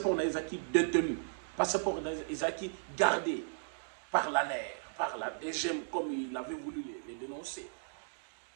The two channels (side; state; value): left; silent; digital silence